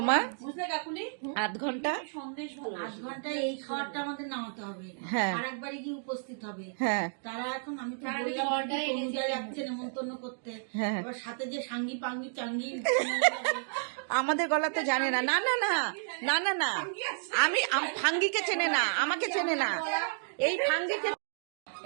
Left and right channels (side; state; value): left; silent; digital silence